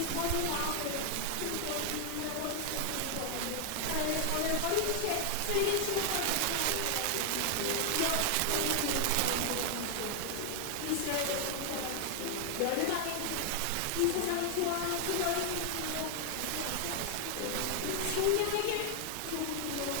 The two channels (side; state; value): both; different; correlation 0.00